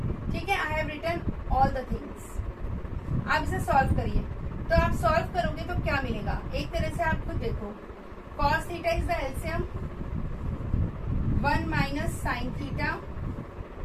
ठीक है, I have written all the things. आप इसे सॉल्व करिए, तो आप सॉल्व करोगे तो क्या मिलेगा, एक तरह से आप खुद देखो, cos theta is the LCM 1 minus sine theta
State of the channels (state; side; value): identical; both; correlation 1.00